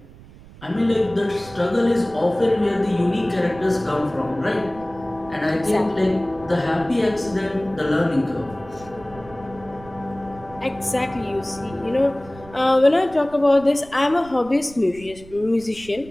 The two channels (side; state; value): right; noise; rumble, 20 dB below the sound